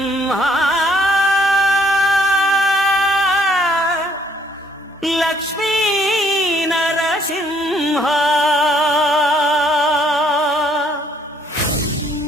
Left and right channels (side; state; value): both; normal; correlation 0.65